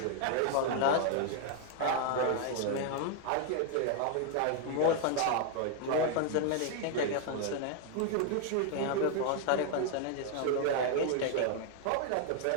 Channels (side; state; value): both; different; correlation 0.00